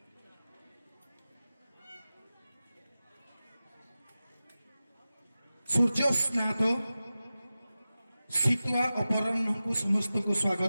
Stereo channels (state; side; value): inverted; both; correlation -0.95